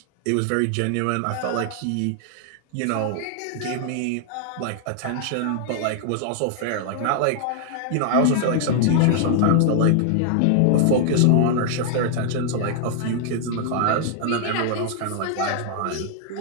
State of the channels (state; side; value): different; both; correlation 0.00